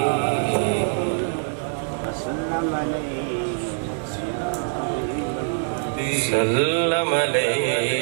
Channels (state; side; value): silent; left; 60 dB below the other